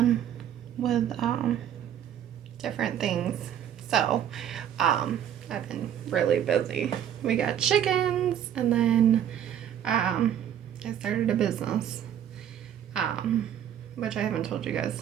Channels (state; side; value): quieter; left; 9.9 dB